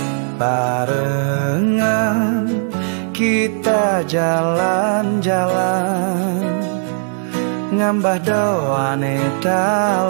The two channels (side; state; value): left; silent; digital silence